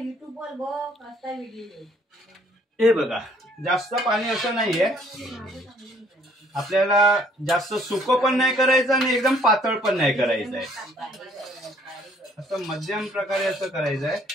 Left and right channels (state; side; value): normal; both; correlation 0.61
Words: वर बघ असा व्हिडिओ. हे बघा जास्त पाणी असं नाहीये, आपल्याला जास्त सुकं पण नाही करायचं आणि एकदम पातळ पण नाही करायचं आहे. असं मध्यम प्रकारे असं करायचं